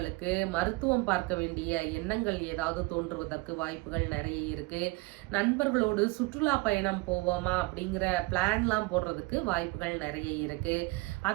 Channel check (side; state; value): left; quieter; 23.7 dB